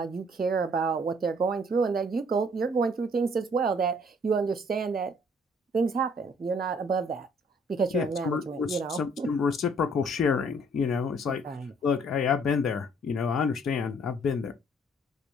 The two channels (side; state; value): both; normal; correlation 0.61